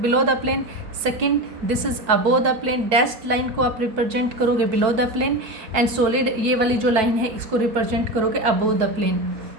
the plane, second this is above the plane, dashed line को आप रिप्रेजेंट करोगे below the plane, and solid ये वाली जो लाइन है इसको रिप्रेजेंट करोगे अबोव द प्लेन,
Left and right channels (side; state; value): left; late; 4.6 ms